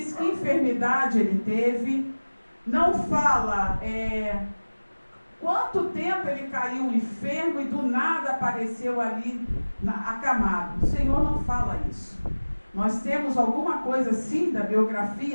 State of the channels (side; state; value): both; inverted; correlation -1.00